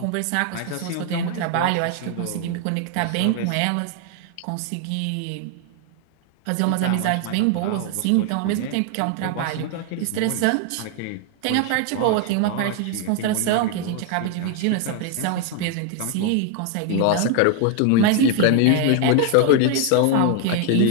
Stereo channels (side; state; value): both; different; correlation 0.00